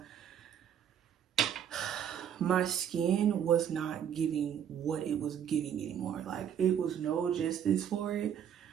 my skin was not giving what it was giving anymore. Like, it was no justice for it.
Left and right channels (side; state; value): left; quieter; 9.0 dB